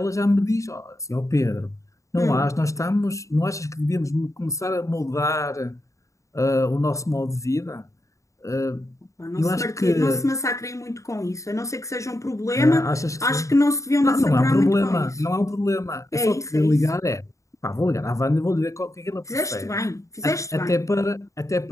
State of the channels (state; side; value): late; right; 0.15 ms